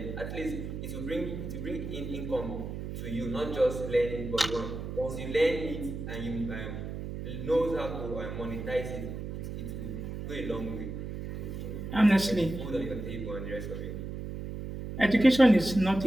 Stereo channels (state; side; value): noise; right; hum, 7 dB below the sound